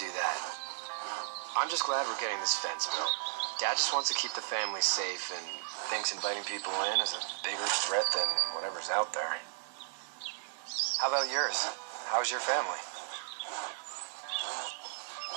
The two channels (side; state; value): left; silent; digital silence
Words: that. I'm just glad we're getting this fence built. Dad just wants to keep the family safe and thinks inviting people in is a bigger threat than whatever's out there. How about yours? How's your family?